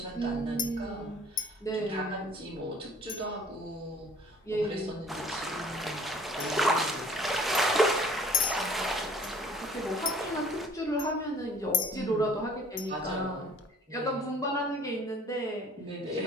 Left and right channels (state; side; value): normal; both; correlation 0.53